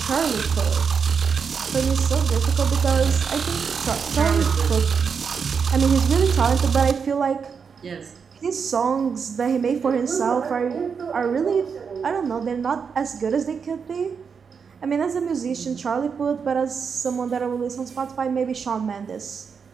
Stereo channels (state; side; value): quieter; left; 6.1 dB